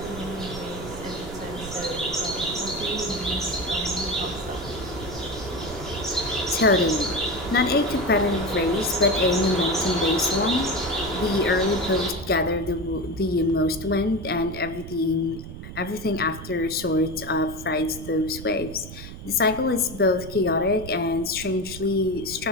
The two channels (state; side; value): noise; right; rumble, 12 dB below the sound